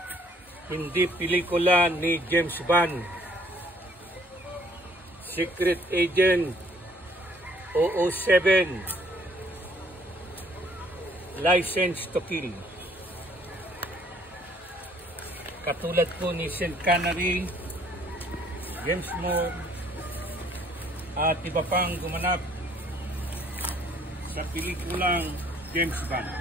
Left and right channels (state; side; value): normal; both; correlation 0.61